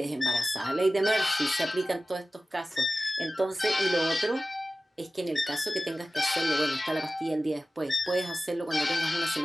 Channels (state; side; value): normal; both; correlation 0.96